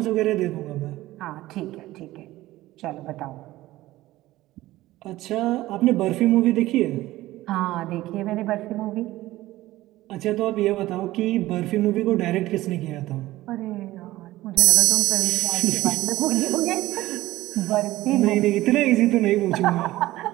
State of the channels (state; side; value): quieter; left; 16.8 dB